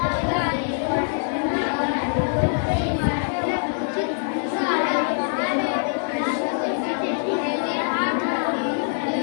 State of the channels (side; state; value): right; silent; digital silence